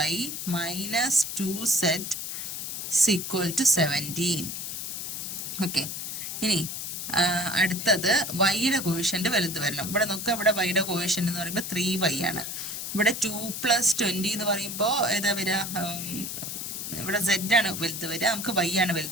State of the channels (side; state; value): left; noise; hiss, 5 dB below the sound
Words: minus 2z equal to 17. Okay, ഇനി അടുത്തത് വൈയുടെ കോഷ്യൻ്റ് വലുത് വരണം. ഇവിടെ നോക്കുക, ഇവിടെ വൈയുടെ കോഷ്യൻ്റ് എന്ന് പറയുമ്പോൾ 3y ആണ്. ഇവിടെ 2 + 20 എന്ന് പറയുമ്പോൾ ഏതാ വരിക, ഇവിടെ z ആണ് വലുത് വരിക, നമുക്ക് y ആണ്